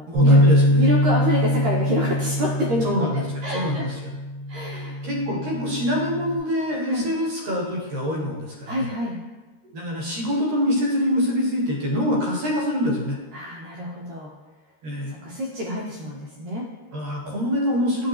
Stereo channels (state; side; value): late; left; 13 ms